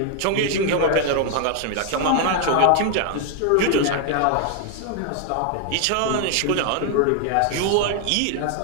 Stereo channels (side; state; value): both; different; correlation 0.00